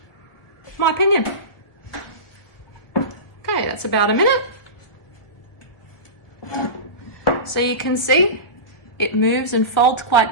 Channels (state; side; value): late; right; 1.2 ms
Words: my opinion. Okay, that's about a minute. So you can see it moves and folds quite